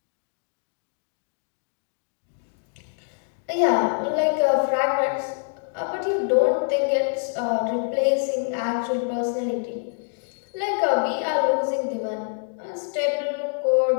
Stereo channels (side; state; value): right; silent; digital silence